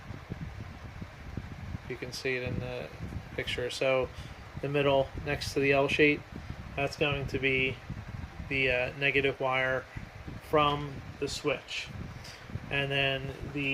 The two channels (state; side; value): identical; both; correlation 1.00